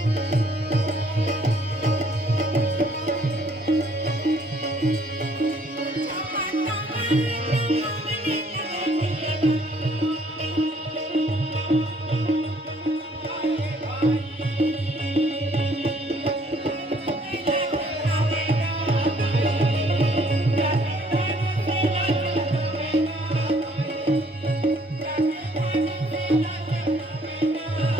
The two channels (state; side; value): normal; both; correlation 0.63